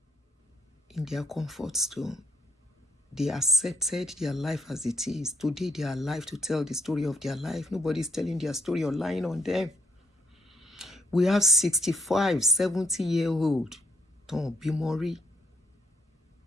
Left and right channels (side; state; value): both; normal; correlation 0.72